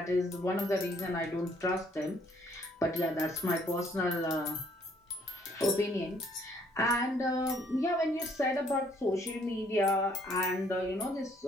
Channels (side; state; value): both; normal; correlation 0.64